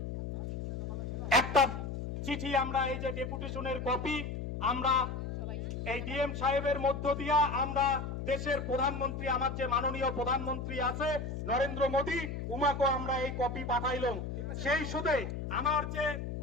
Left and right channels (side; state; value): left; noise; hum, 5 dB below the sound